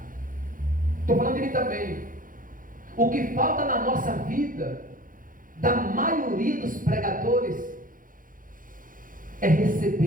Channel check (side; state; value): left; late; 0.40 ms